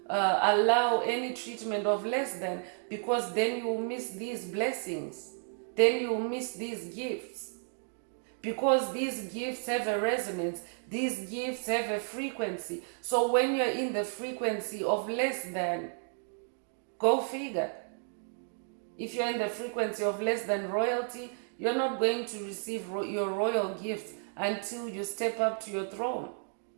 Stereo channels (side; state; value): left; silent; 56 dB below the other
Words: allow any treatment of less than, because then you will miss these blessings. Then you will miss these gifts. Because these gifts have a resonance. These gifts have a frequency. So when you're in the frequency of less than, go figure. If you're in the frequency of less than royalty, you're not going to receive your royal gifts until you step up to your throne.